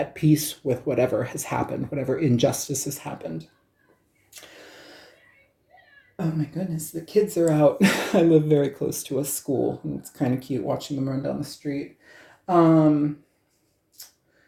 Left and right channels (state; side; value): identical; both; correlation 1.00